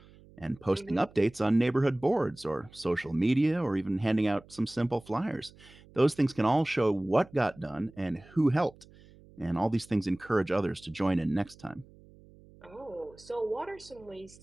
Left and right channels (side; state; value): right; noise; hum, 24 dB below the sound